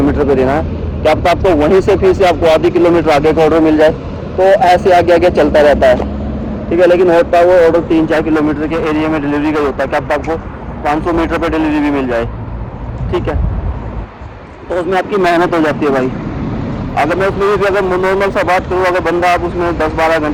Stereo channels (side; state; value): both; identical; correlation 1.00